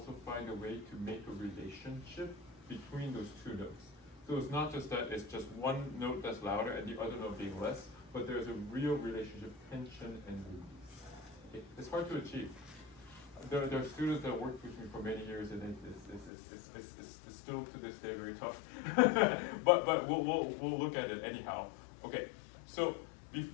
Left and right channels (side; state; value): right; drops out; at 16.3 s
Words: find a way to make a relationship between those two notes. So it's not just that it's just one note that's louder and the other note being less, but there's a real relationship, tension and release. It's hard to achieve. There are students that worked with me for many years, and it's still to this day very tough. but we'll look at it anyhow. Okay, so